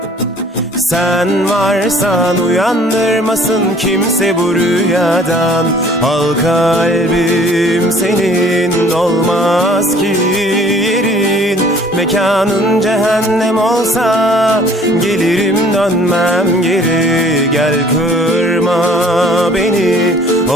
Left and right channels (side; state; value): both; normal; correlation 0.55